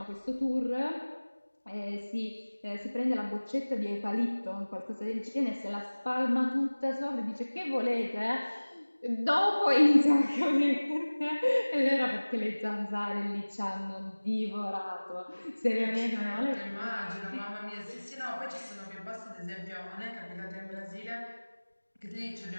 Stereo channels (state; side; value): inverted; both; correlation -1.00